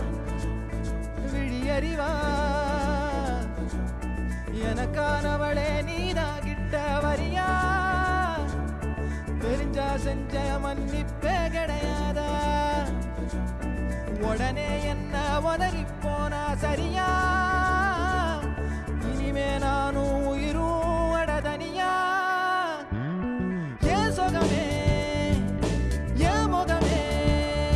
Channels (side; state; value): both; identical; correlation 1.00